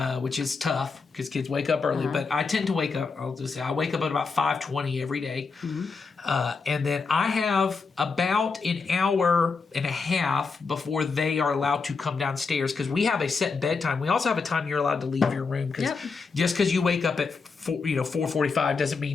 which is tough because kids wake up early. But I tend to wake up, I'll just say, I wake up at about 5:20 every day. And then I have about an hour and a half before they are allowed to come downstairs because we have a set bedtime. We also have a time you're allowed to leave your room because just because you wake up at 4:45 doesn't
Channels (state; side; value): quieter; right; 4.7 dB